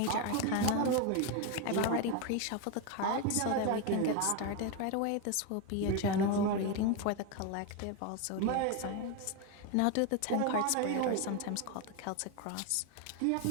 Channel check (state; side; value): different; both; correlation 0.02